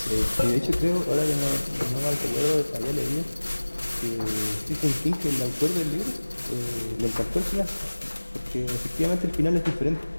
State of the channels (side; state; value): both; inverted; correlation -1.00